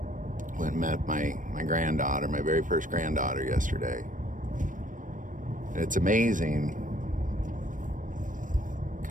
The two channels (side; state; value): left; late; 0.38 ms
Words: Went and met my granddaughter, my very first granddaughter yesterday. And it's amazing